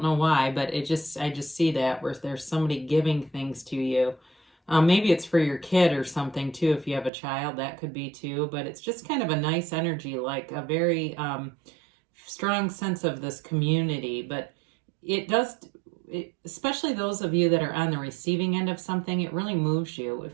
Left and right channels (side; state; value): left; drops out; at 7.1 s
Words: know why, but I just see that where there's somebody giving things to you. Maybe it's for your kid or something too. If you have a child, that could be too. But it's just kind of a nice energy, like a very strong sense of this community. But especially those of you that are on the receiving end of something, it really moves you. It